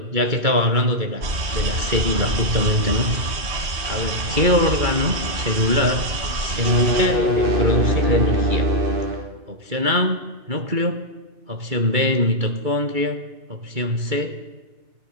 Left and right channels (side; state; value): left; late; 2.3 ms